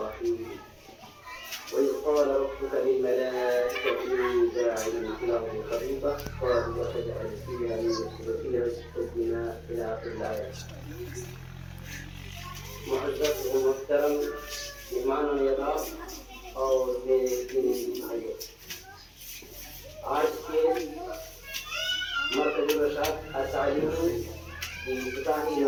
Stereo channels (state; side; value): identical; both; correlation 1.00